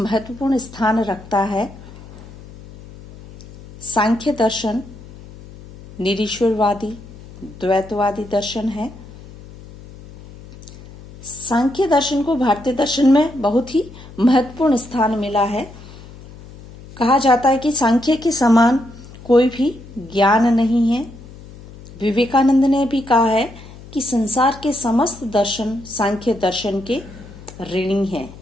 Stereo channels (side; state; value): left; noise; hum, 18 dB below the sound